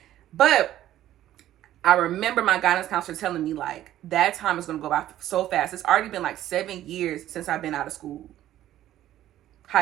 But I remember my guidance counselor telling me like that time is gonna go by so fast. It's already been like 7 years since I've been out of school,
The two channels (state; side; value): quieter; left; 12.9 dB